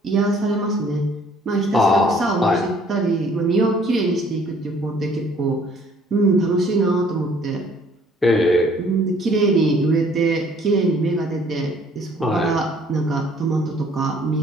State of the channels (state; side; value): normal; both; correlation 0.59